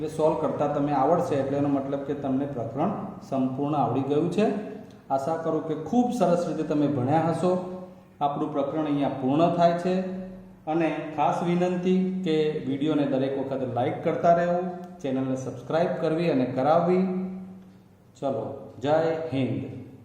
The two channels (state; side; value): identical; both; correlation 1.00